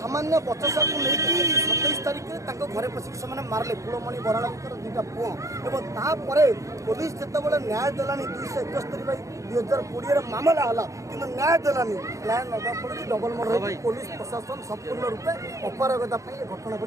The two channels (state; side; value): late; left; 0.15 ms